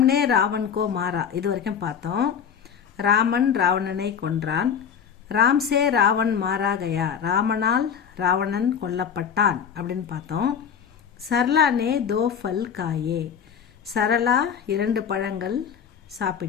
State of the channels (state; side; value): quieter; right; 7.6 dB